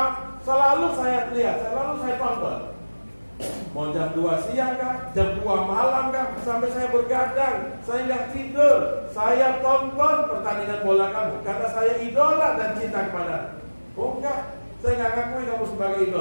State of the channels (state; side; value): inverted; both; correlation -1.00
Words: selalu saya lihat, selalu saya tonton. Mau jam 2 siang kah, jam 2 malam kah, sampai saya bergadang, saya nggak tidur, saya tonton pertandingan bola kamu karena saya idola dan cinta kepada. Oh enggak, saya nggak ngakui kamu sebagai